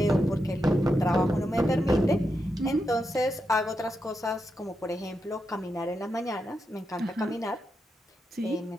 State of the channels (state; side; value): normal; both; correlation 0.86